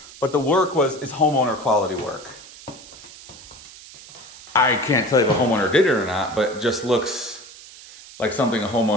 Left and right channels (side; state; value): right; noise; hiss, 18 dB below the sound